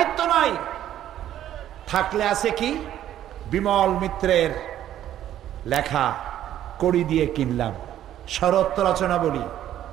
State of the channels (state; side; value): quieter; left; 11.7 dB